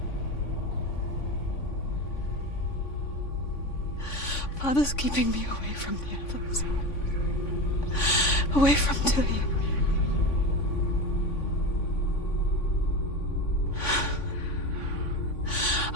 Father's keeping me away from the others. Away from Tilly.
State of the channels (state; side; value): late; right; 3.5 ms